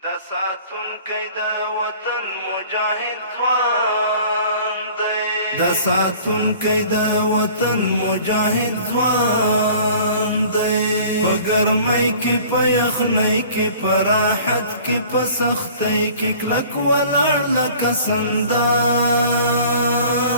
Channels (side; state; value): both; inverted; correlation -0.48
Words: دا ساتونکی د وطن مجاهد ځوان دی دا ساتونکی د وطن مجاهد ځوان دی په ګرمۍ کې په یخنۍ کې په راحت کې په سختۍ کې کلک ولاړ لکه سندان